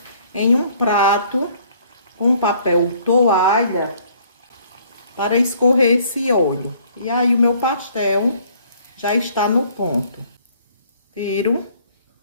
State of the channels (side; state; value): both; inverted; correlation -0.60